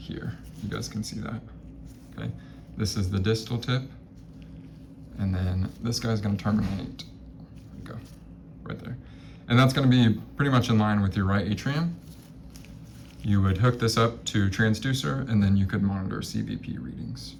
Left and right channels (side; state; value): both; identical; correlation 1.00